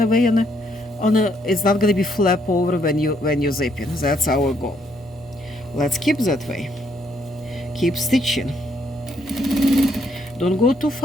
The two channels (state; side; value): normal; both; correlation 0.71